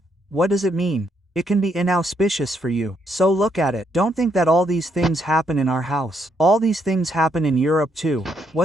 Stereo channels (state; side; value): normal; both; correlation 0.75